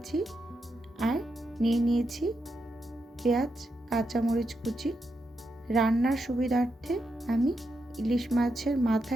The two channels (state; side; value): normal; both; correlation 0.84